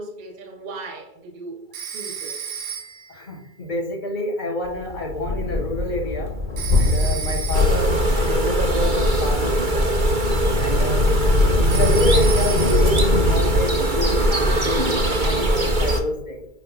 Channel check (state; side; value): late; left; 2.3 ms